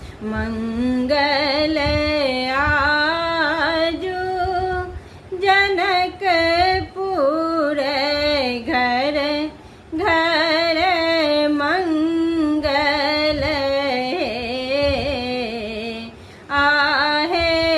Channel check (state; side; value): identical; both; correlation 1.00